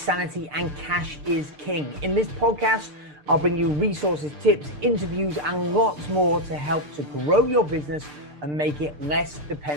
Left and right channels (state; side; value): late; left; 6.7 ms